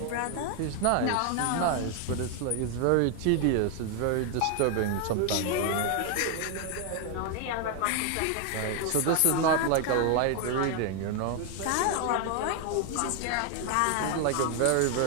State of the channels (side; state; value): both; different; correlation 0.01